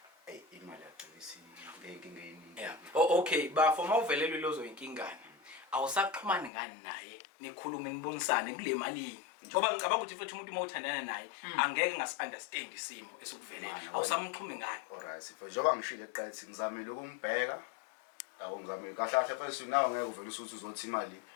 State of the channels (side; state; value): right; drops out; at 6.5 s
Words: imali yagcina ngenkinga eningi okay bafo mawuvelelwe lozo inkingane awusaxhumani ngani naye nikhulume nibonisane kule malini ngoba ngicabanga ukuthi futhi umuntu mawuthandana naye angeke ngasi-understand isimo esikuvelela awusamxhumi ngani alright sifo njengoba ngishilo eqathi ngizamile ukumbheka yabo ngizamile kahle first nawe ngeke uvele usuthi uzothi imali